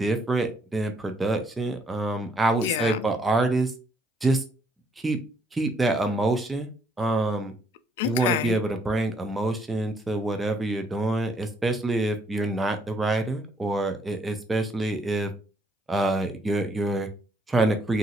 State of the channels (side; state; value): both; normal; correlation 0.69